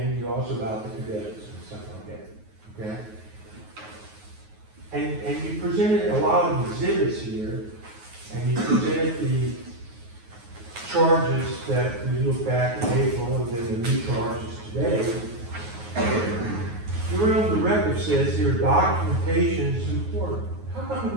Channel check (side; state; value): left; late; 9.4 ms